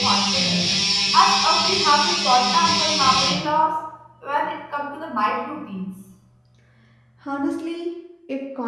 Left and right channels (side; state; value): both; identical; correlation 1.00